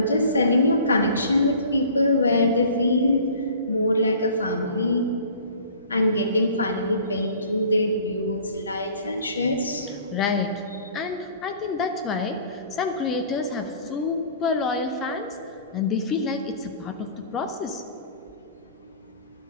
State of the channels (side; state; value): both; inverted; correlation -0.47